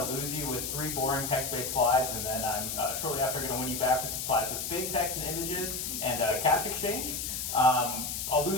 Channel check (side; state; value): left; noise; hiss, 3 dB below the sound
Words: to lose you with 3 boring text-based slides, and then I'm shortly after going to win you back with some slides with big text and images and cash exchange. I'll